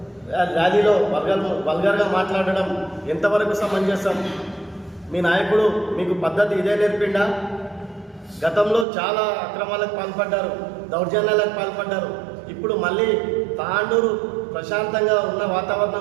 ర్యాలీలో వల్గర్గా మాట్లాడడం ఎంతవరకు సమంజసం? మీ నాయకుడు మీకు పద్ధతి ఇదే నేర్పిండా? గతంలో చాలా అక్రమాలకు పాల్పడ్డారు, దౌర్జన్యాలకు పాల్పడ్డారు. ఇప్పుడు మళ్ళీ తాండూరు ప్రశాంతంగా ఉన్న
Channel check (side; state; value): left; drops out; at 8.8 s